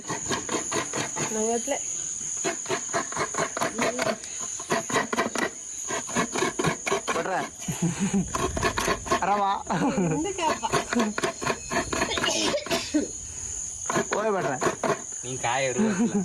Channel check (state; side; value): identical; both; correlation 1.00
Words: ನಂಗತ್ಲೆ ಬಟ್ರ ಆರಾಮ ಓಯ್ ಬಟ್ರ ನೀನ್ ಕಾಯರು